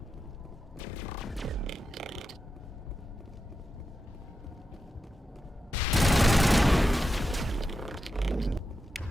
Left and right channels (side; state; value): both; normal; correlation 0.88